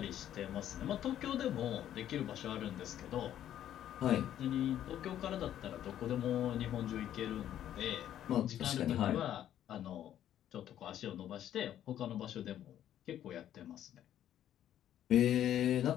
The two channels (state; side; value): quieter; right; 11.2 dB